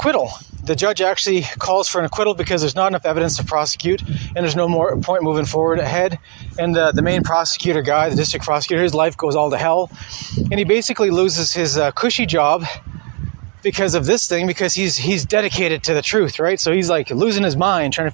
The judge actually calls for an acquittal because there's not enough evidence to prosecute, and there's no more point moving forward ahead. And the main prosecutor guy, the district prosecutor, his life goes all to hell. And he basically loses his cushy job because of this thing, because he's dedicated to the truth, right? So he's like losing his mind trying to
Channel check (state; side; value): quieter; left; 32.4 dB